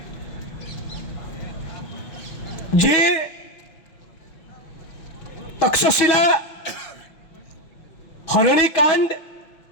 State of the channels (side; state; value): right; late; 6.4 ms